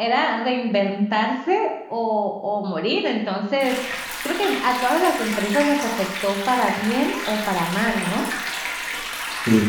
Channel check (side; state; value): both; identical; correlation 1.00